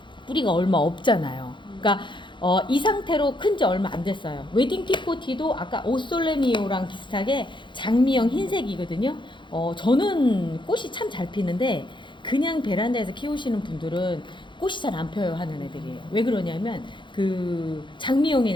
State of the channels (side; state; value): right; late; 0.23 ms